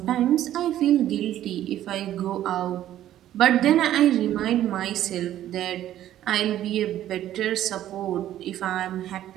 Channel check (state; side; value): quieter; left; 12.5 dB